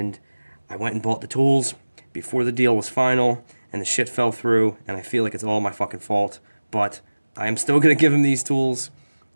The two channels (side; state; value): both; inverted; correlation -1.00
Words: I went and bought the tools before the deal was final, and the shit fell through, and I feel like it's all my fucking fault. But I am still gonna give him these tools,